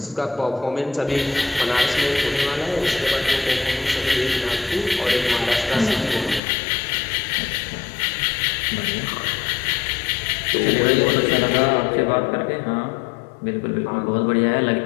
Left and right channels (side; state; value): right; drops out; at 6.4 s